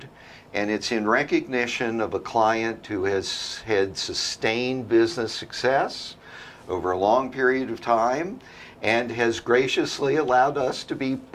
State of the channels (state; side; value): identical; both; correlation 1.00